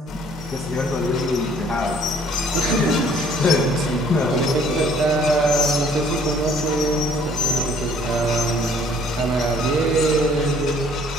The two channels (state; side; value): normal; both; correlation 0.59